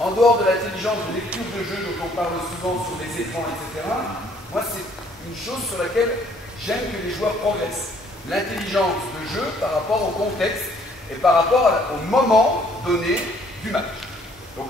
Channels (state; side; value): normal; both; correlation 0.62